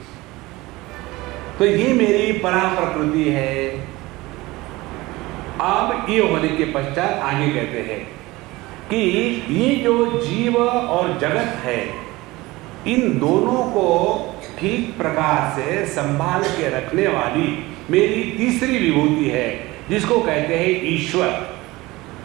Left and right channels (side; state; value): left; quieter; 20.4 dB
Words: तो ये मेरी परा प्रकृति है। अब ये होने के पश्चात आगे कहते हैं कि ये जो जीव और जगत है, इन दोनों को ठीक प्रकार से संभाल के रखने वाली मेरी तीसरी विभूति है, जिसको कहते हैं ईश्वर।